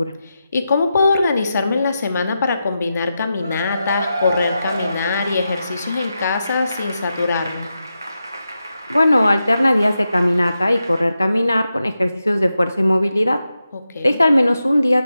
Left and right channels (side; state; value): both; inverted; correlation -0.89